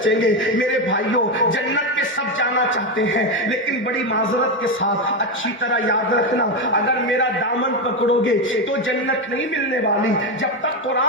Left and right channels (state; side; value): normal; both; correlation 0.10